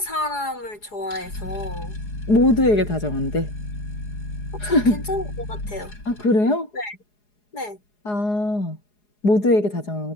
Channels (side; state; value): right; late; 4.8 ms